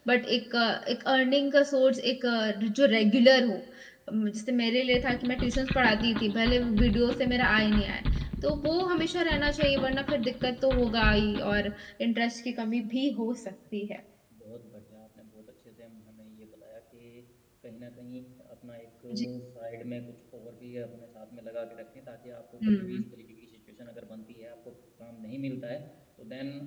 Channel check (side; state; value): both; identical; correlation 1.00